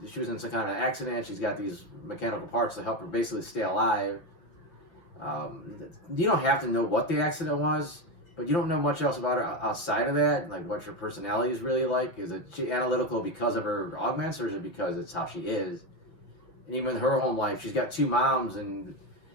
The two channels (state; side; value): late; right; 6.2 ms